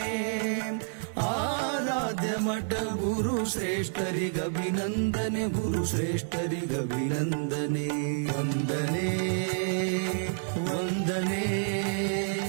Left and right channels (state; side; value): silent; left; digital silence